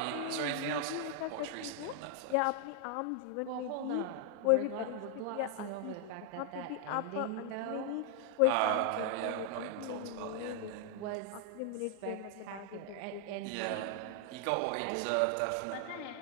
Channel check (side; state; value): both; different; correlation 0.00